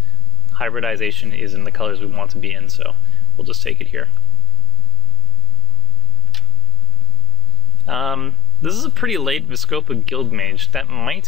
Hybridization is in the colors we want to be in, so we'll just take it here. This is a pretty late Viscopa Guildmage. That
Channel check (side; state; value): both; normal; correlation 0.03